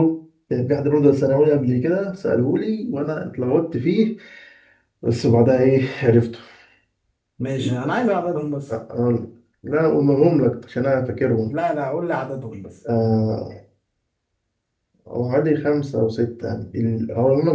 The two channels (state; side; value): identical; both; correlation 1.00